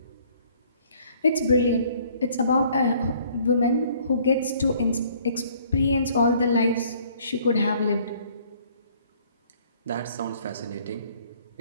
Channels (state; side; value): inverted; both; correlation -0.59